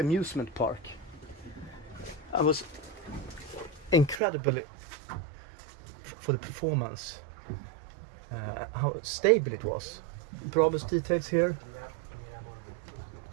park. I was incredibly for the performance, how stable it was. Brabus details here,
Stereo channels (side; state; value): left; drops out; at 4.2 s